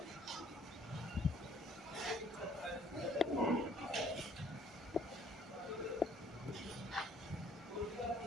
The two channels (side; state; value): both; normal; correlation 0.60